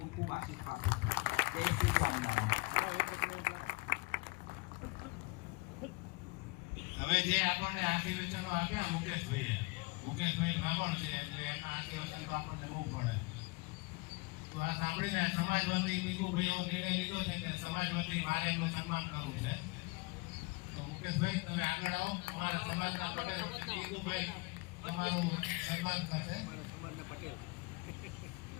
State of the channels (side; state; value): right; quieter; 26.6 dB